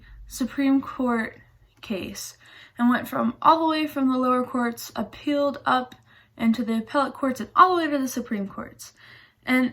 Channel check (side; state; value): both; identical; correlation 1.00